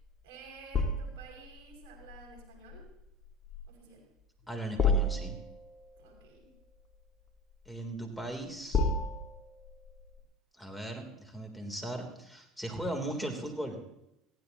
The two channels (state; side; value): normal; both; correlation 0.39